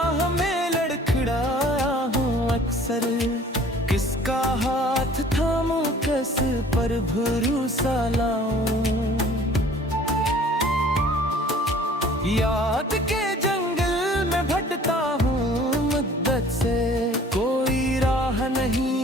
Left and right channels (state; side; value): normal; both; correlation 0.51